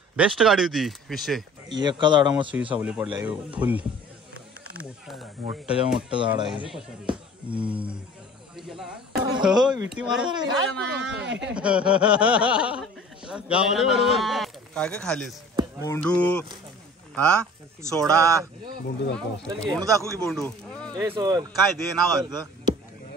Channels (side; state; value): both; normal; correlation 0.46